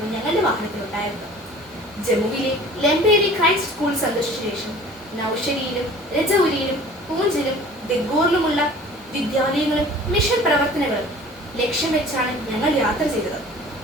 ഞങ്ങളുടെ വാഹനത്തിലുണ്ടായിരുന്നത്. ജമ്മുവിലെ ലെംബേരി ക്രൈസ്റ്റ് സ്കൂൾ സന്ദർശിച്ച ശേഷം നൌഷരിയിലും രജൌരിയിലും പൂഞ്ചിലും ദെഗോറിലുമുള്ള വിദ്യാലയങ്ങളും മിഷൻ പ്രവർത്തനങ്ങളും ലക്ഷ്യം വെച്ചാണ് ഞങ്ങൾ യാത്ര ചെയ്തത്.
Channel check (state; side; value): normal; both; correlation 0.46